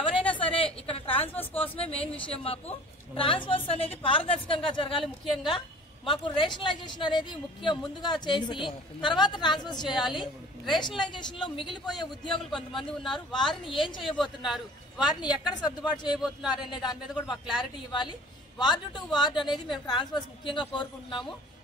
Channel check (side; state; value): both; normal; correlation 0.46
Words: సరే ఇక్కడ ట్రాన్స్ఫర్స్ కోసమే మెయిన్ విషయం. మాకు ట్రాన్స్ఫర్స్ అనేది పారదర్శకంగా జరగాలి. ముఖ్యంగా మాకు రేషనలైజేషన్ అనేది ముందుగా చేసి తర్వాత ట్రాన్స్ఫర్స్ చేయాలి. రేషనలైజేషన్ లో మిగిలిపోయే ఉద్యోగులు కొంతమంది ఉన్నారు. వారిని ఏం చేయబోతున్నారు, వారిని ఎక్కడ సర్దుబాటు చేయబోతున్నారు అనే దాని మీద కూడా మాకు క్లారిటీ ఇవ్వాలి. వార్డు టు వార్డు అనేది మేము ట్రాన్స్ఫర్స్ ముఖ్యంగా కోరుకుంటున్నాము.